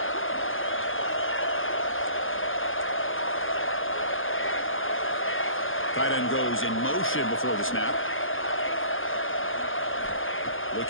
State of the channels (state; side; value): late; right; 0.59 ms